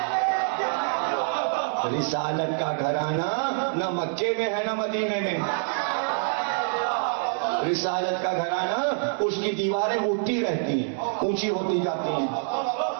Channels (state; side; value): silent; left; 61 dB below the other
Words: رسالت کا گھرانہ نہ مکے میں ہے نہ مدینے میں. رسالت کا گھرانہ اس کی دیواریں اٹھتی رہتی ہیں، اونچی ہوتی جاتی ہیں،